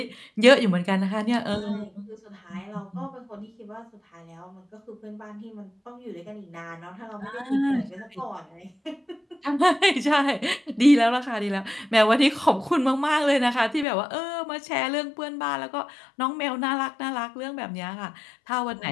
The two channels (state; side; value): drops out; right; at 13.9 s